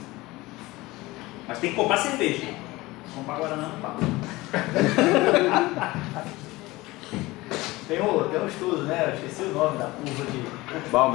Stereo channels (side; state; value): right; quieter; 20.3 dB